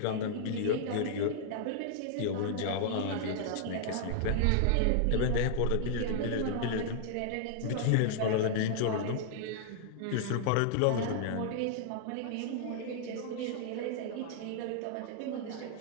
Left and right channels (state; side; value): different; both; correlation -0.01